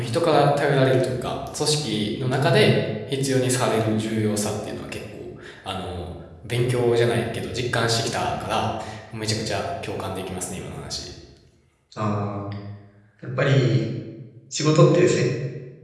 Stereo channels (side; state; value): both; identical; correlation 1.00